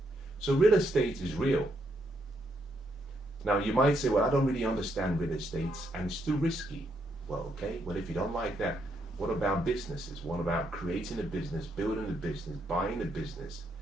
So real estate is real. Now you might say, well, I don't really understand real estate and it's too risky. Well, okay, well, if you don't like that, what about businesses? What about creating a business, building a business, buying a business,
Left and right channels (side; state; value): both; normal; correlation 0.76